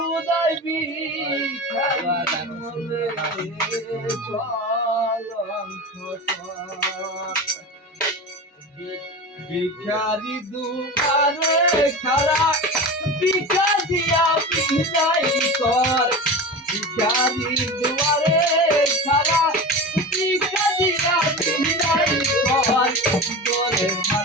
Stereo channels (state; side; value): normal; both; correlation 0.28